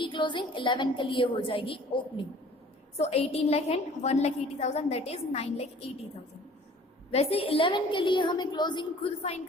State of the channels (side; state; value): both; normal; correlation 0.51